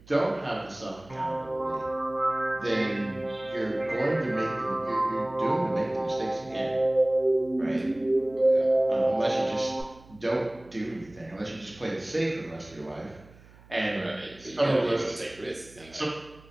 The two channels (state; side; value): noise; right; hum, 24 dB below the sound